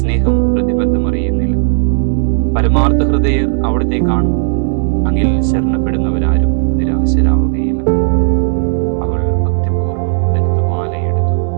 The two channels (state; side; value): silent; left; digital silence